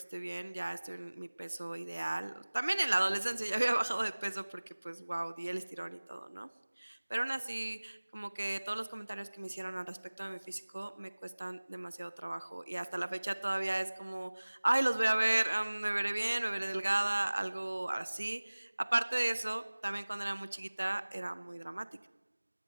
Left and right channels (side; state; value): both; inverted; correlation -1.00